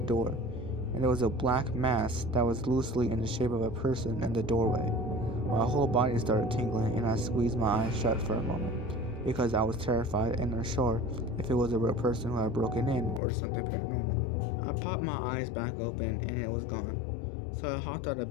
and there was a black mass that was loosely in the shape of a person in the doorway. My whole body started tingling, and I squeezed my eyes shut for a moment, because I was terrified and unsure if it was a real person who had broken in or something paranormal. I popped my eyes back open, and it was gone. So I hopped out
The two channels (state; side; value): drops out; right; at 13.2 s